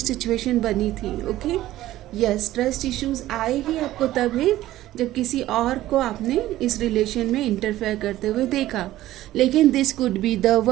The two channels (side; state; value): left; quieter; 14.9 dB